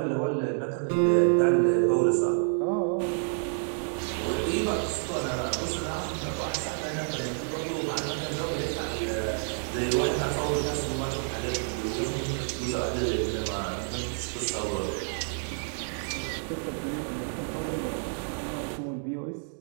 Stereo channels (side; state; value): left; silent; 58 dB below the other